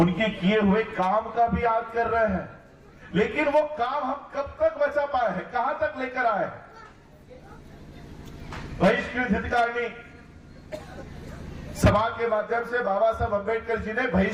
किए हुए काम का भी याद कर रहे हैं, लेकिन वो काम हम कब तक बचा पाए हैं, कहां तक लेकर आए? बहिष्कृत हितकारिणी सभा के माध्यम से बाबा साहब अंबेडकर जी ने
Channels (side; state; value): both; identical; correlation 1.00